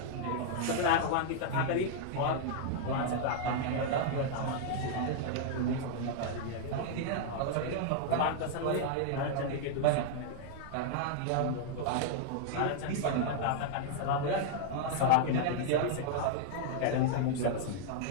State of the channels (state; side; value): different; both; correlation -0.01